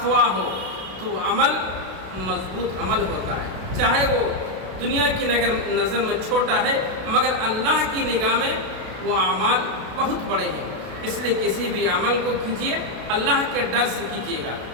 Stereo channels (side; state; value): left; late; 32 ms